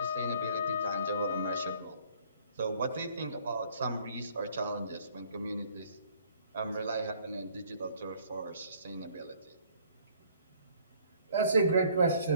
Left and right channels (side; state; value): both; inverted; correlation -0.58